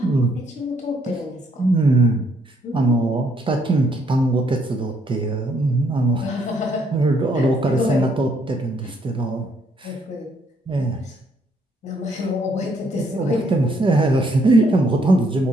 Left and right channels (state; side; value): normal; both; correlation 0.70